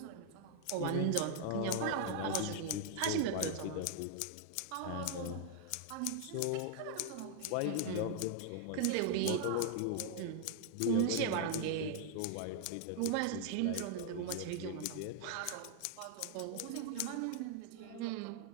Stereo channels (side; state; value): both; different; correlation 0.00